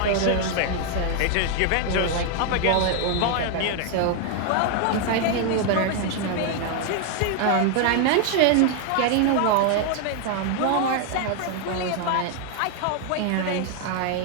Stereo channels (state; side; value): different; both; correlation 0.00